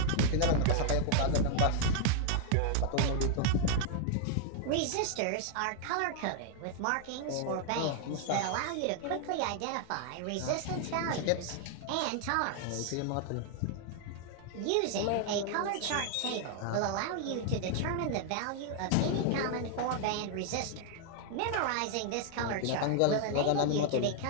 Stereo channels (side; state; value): both; different; correlation 0.00